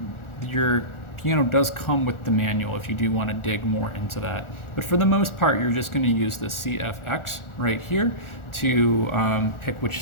your piano does come with the manual if you do want to dig more into that. But for the most part, you're just going to use the CFX right here to pick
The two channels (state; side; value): late; right; 1.4 ms